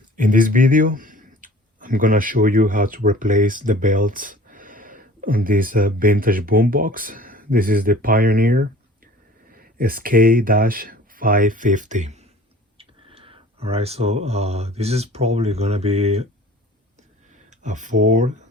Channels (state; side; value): normal; both; correlation 0.46